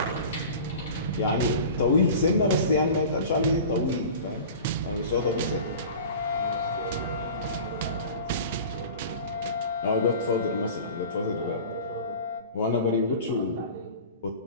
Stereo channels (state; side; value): inverted; both; correlation -0.38